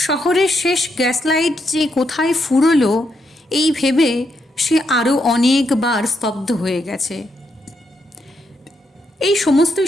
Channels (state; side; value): normal; both; correlation 0.80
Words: শহরের শেষ গ্যাস লাইট যে কোথায় ফুরলো এই ভেবে সে আরও অনেকবার স্তব্ধ হয়ে গেছে। এই